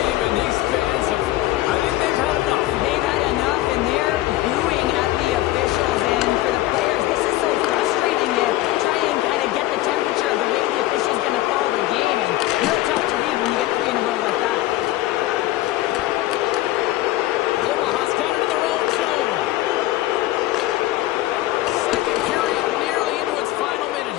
And these fans have, I think they've had enough. They've had enough, and they're booing at the officials. And for the players, this is so frustrating. You try and kind of get the temperature of the way the official's going to call the game. And real tough to read when you get 3 in a row like that. Omaha's got it in their own zone. Second period nearly into its final minute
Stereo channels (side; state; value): right; quieter; 16.3 dB